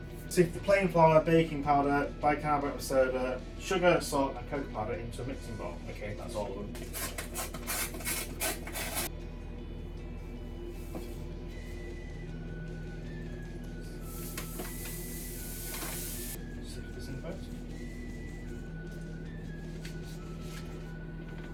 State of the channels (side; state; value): both; identical; correlation 1.00